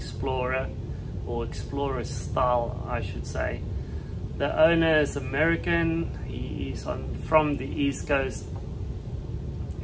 or Explorer style, I should say. The owner is American. He is from the East Coast.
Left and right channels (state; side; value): identical; both; correlation 1.00